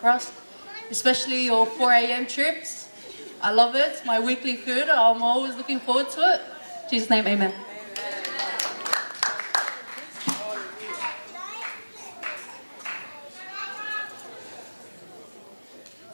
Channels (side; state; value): both; inverted; correlation -1.00